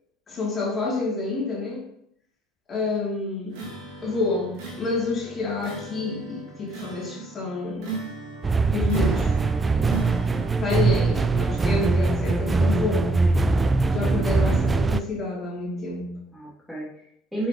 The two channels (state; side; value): normal; both; correlation 0.69